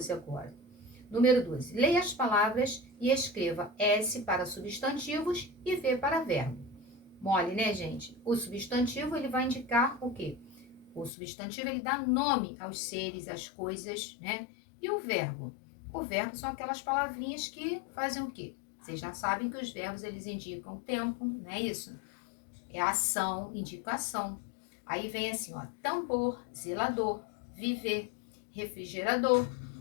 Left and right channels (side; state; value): right; drops out; at 11.1 s